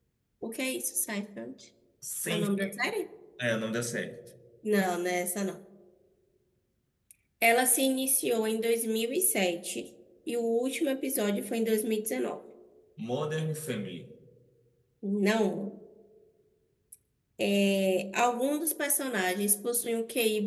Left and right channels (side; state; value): both; identical; correlation 1.00